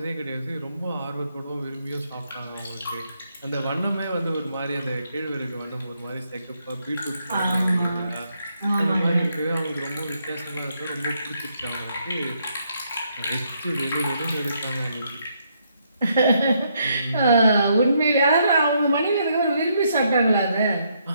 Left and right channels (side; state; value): both; inverted; correlation -0.75